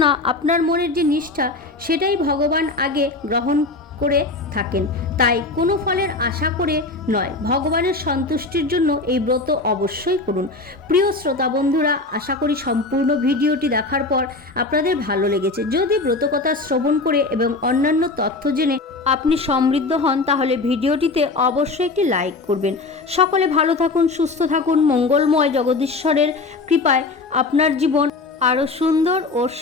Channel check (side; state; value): right; quieter; 3.5 dB